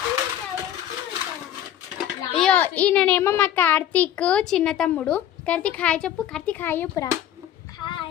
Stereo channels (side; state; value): right; quieter; 11.1 dB